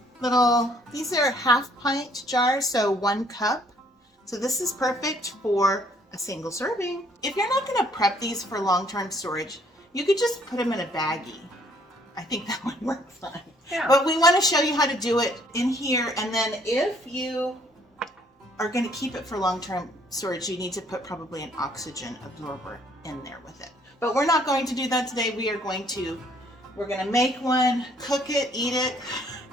These are half-pint jars, so 1 cup. So this is perfect for a single serving. If you're not gonna prep these for long-term storage, you could just put them in a baggie. I think that would work fine. Yeah. But we wanna show you how to do it in here, and then if you are gonna keep it for long-term storage, you need to put probably an oxygen absorber in there with it. But we're not going to do that today. We're gonna make one, cook it, eat it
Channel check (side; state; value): both; normal; correlation 0.63